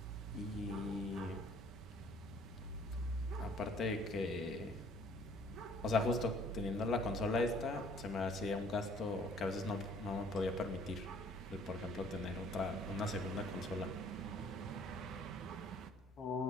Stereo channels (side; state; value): both; normal; correlation 0.57